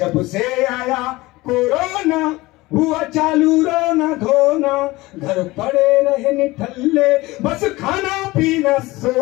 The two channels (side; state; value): right; quieter; 20.3 dB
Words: से आया कोरोना हुआ चालू रोना धोना, घर पड़े रहे निठल्ले बस खाना पीना